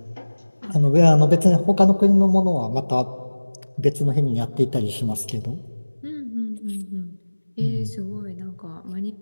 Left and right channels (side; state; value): both; inverted; correlation -1.00